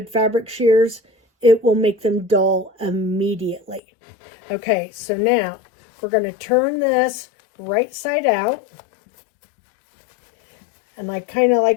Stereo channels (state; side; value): drops out; right; at 3.8 s